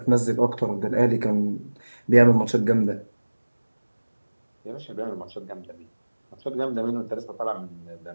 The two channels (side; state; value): both; inverted; correlation -1.00